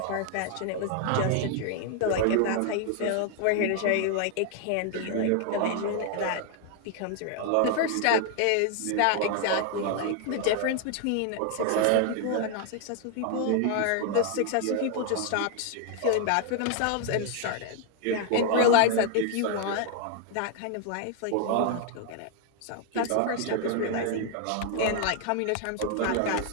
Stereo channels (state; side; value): different; both; correlation 0.00